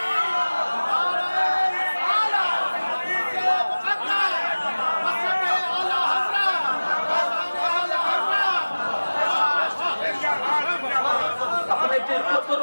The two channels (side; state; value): both; inverted; correlation -1.00